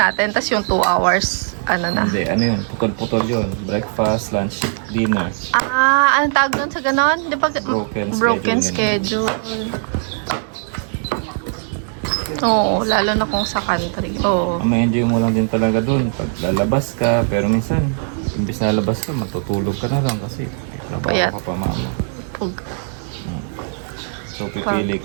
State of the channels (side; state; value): left; silent; 63 dB below the other